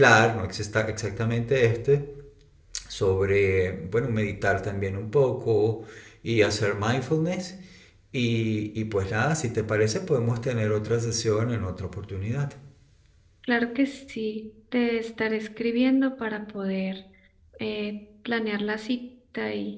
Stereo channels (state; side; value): identical; both; correlation 1.00